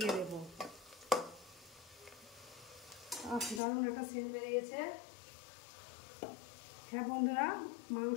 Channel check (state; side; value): drops out; right; at 3.6 s